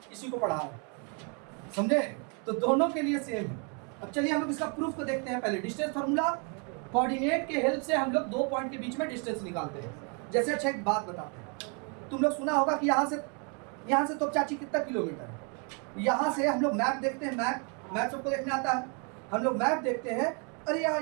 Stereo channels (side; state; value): left; quieter; 36.9 dB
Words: इसी को पढ़ा है, समझे? तो दोनों के लिए सेम है। अब चलिए हम लोग इसका प्रूफ को देखते हैं। पहले डिस्टेंस फार्मूला, कोऑर्डिनेट के हेल्प से हम लोग दो पॉइंट के बीच में डिस्टेंस निकालते हैं। जैसे अच्छा एक बात बताते हैं, तुम लोग सुना होगा कि यहाँ से तो चाची कितना किलोमीटर है। यहाँ से हम लोग मैप देखते हैं, मैप सबको देखने आता है। हम लोग मैप देखते हैं, अरे यार